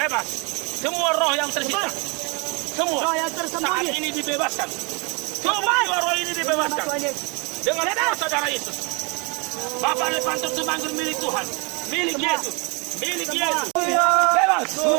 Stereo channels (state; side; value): quieter; left; 30.7 dB